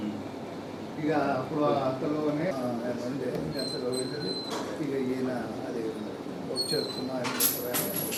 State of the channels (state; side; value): identical; both; correlation 1.00